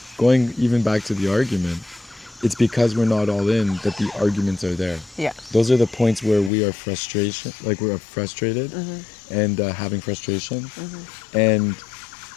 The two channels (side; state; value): right; drops out; at 6.5 s